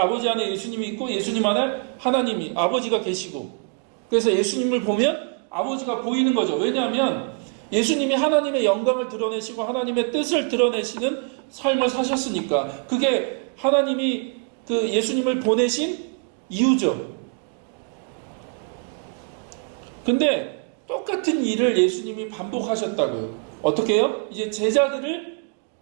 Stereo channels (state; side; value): quieter; left; 36.8 dB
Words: 아버지 안에 예수님이 있고 예수님 안에 하나님이, 아버지가 계시고, 그래서 예수님을 보면 아버지가 보이는 거죠. 왜냐하면 예수님이 하나님의 영광을 드러내시고 하나님의 뜻을 드러내시는 삶을 사셨으니까. 그게 하나님이 예수님을 보내신 이유죠. 근데 똑같은 일을 예수님이 반복하셨다고요. 어떻게 해요? 이제 제자들을